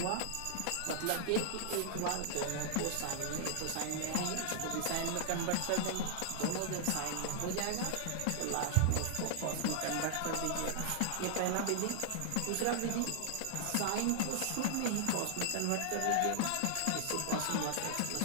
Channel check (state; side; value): different; both; correlation -0.01